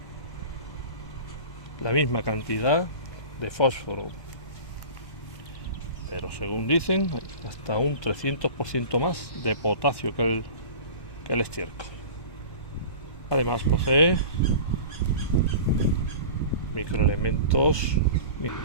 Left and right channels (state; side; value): late; right; 1.1 ms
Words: La misma cantidad de fósforo, pero según dicen, hasta un 300% más de potasio que el estiércol. Además posee microelementos